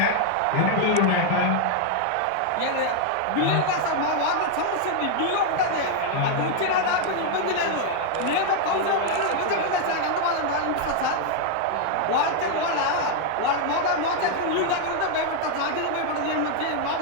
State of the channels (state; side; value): different; both; correlation 0.00